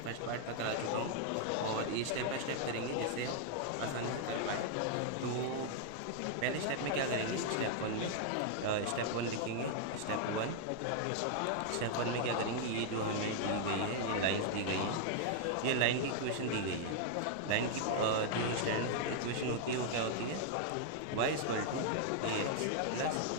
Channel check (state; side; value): different; both; correlation -0.01